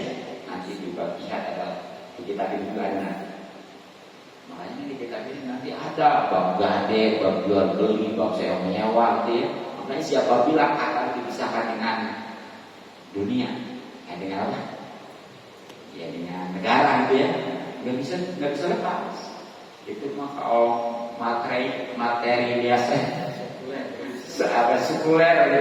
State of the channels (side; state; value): both; identical; correlation 1.00